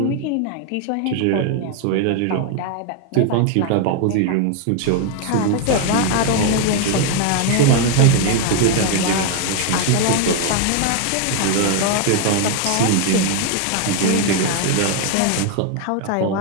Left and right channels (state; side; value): different; both; correlation 0.01